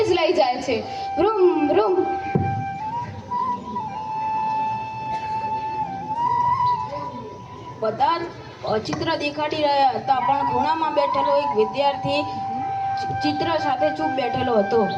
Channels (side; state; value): both; identical; correlation 1.00